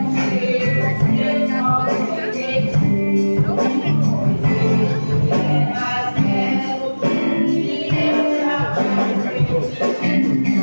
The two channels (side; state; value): both; inverted; correlation -1.00